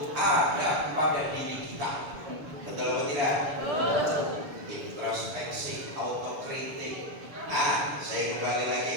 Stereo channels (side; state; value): left; late; 7.0 ms